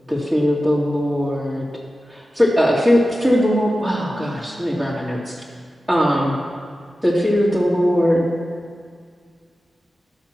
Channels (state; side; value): normal; both; correlation 0.94